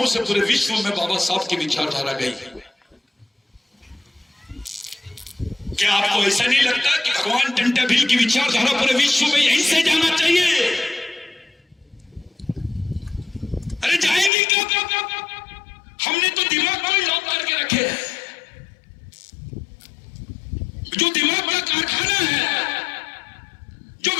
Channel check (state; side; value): drops out; right; at 14.3 s